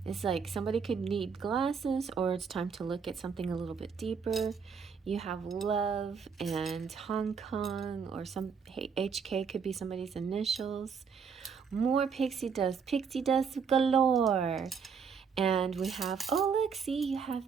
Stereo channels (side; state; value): left; quieter; 6.2 dB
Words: it's like somebody could need glasses, or it's time to look at something a little bit deeper. You have love and Hong Kong, or some HK could be somebody's initials. More pixie dust galore. And we have, oh look, see, you have